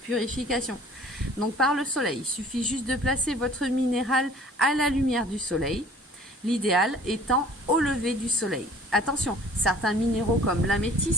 Donc par le soleil, il suffit juste de placer votre minéral à la lumière du soleil, l'idéal étant au lever du soleil. Attention, certains minéraux comme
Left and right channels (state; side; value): normal; both; correlation 0.51